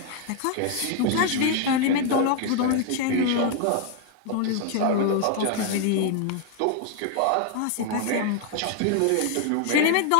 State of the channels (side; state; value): both; different; correlation 0.00